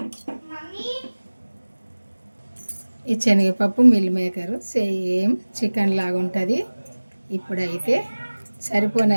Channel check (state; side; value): inverted; both; correlation -1.00